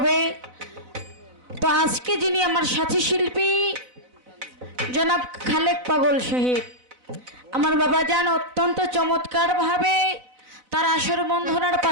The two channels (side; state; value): left; late; 4.0 ms